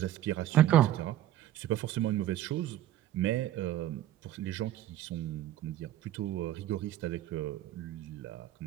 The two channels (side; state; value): left; quieter; 13.0 dB